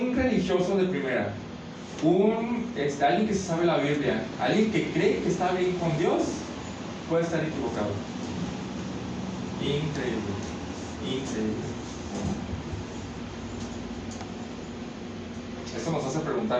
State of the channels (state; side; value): identical; both; correlation 1.00